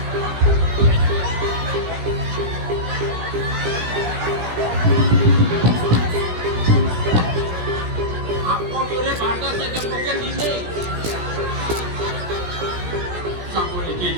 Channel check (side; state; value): left; late; 17 ms